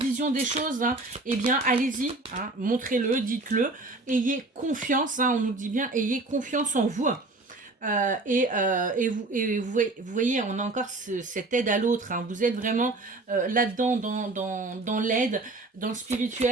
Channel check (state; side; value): quieter; left; 3.1 dB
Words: des choses, hein. Eh bien, allez-y, hein, montrez-le, dites-le, ayez confiance, hein, on nous dit bien, ayez confiance en vous. Vous voyez, on a encore cette aide à l'autre, hein. Vous êtes vraiment là-dedans, dans l'aide, dans le